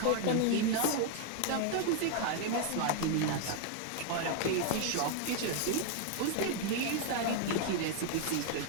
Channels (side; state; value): both; different; correlation 0.00